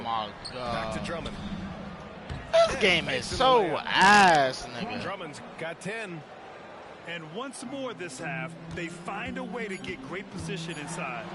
my God. Back to Drummond. This game is so ass, nigga. Drummond's got 10. And once more this half, they find a way to get great position inside.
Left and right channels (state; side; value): identical; both; correlation 1.00